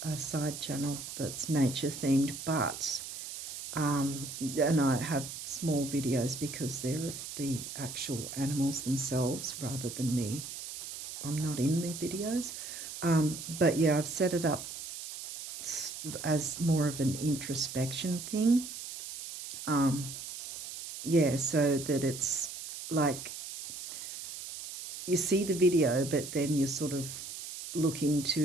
a side channel that's nature themed, but and I have small videos because they're of the actual animals themselves rather than me. I'm not in the videos, but yeah, I've set it up as more of an introspection thing. Yeah, so that it's like you see the video, but then you sort of look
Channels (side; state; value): right; noise; hiss, 9 dB below the sound